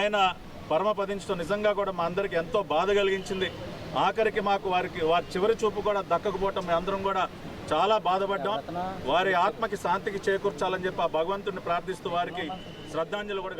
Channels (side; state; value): both; identical; correlation 1.00